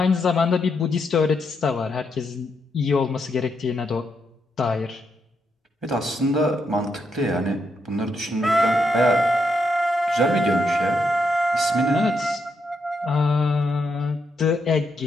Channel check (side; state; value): both; normal; correlation 0.80